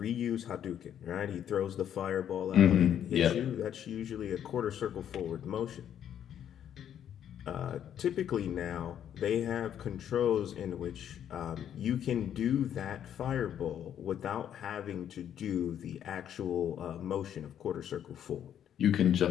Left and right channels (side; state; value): right; quieter; 9.8 dB